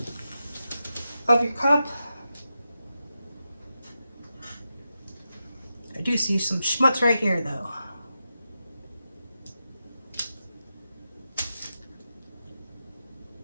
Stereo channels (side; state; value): both; inverted; correlation -0.89